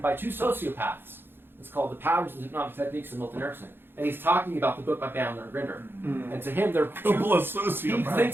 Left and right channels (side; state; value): left; late; 0.10 ms